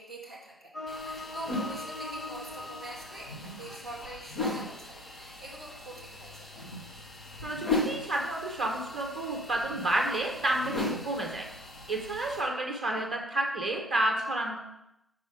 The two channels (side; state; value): both; normal; correlation 0.54